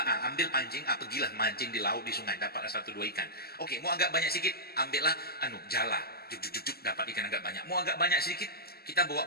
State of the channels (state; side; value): late; right; 0.46 ms